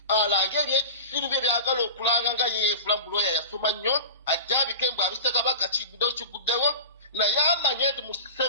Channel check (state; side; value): inverted; both; correlation -0.31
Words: alanga ebyekisiru bye byagala okulanga nga yeefula mbuloya yasoma nnyo ajja abikembe abise Kabaka kiguddewo naye amanye nti